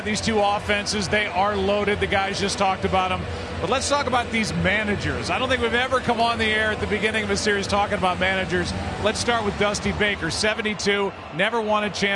these two offenses. They are loaded. The guys just talked about them. But let's talk about these managers. I don't think we've ever come on the air at the beginning of a series talking about managers. Let's start with Dusty Baker, 72, never won a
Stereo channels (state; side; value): identical; both; correlation 1.00